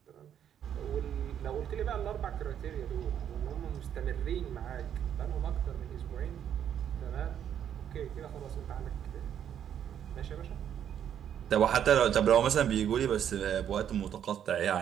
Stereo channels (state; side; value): quieter; left; 9.4 dB